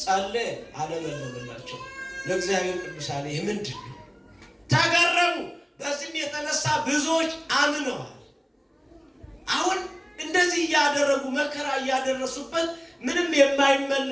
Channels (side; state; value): both; identical; correlation 1.00